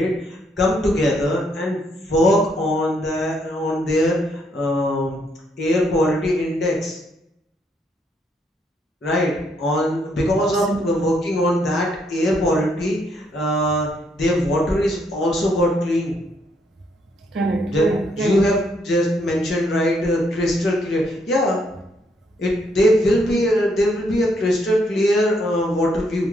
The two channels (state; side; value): normal; both; correlation 0.73